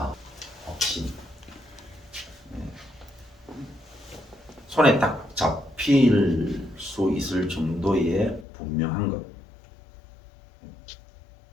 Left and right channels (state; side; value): drops out; right; at 8.5 s